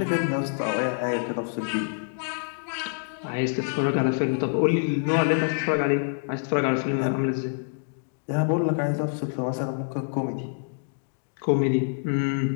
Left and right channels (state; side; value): silent; right; digital silence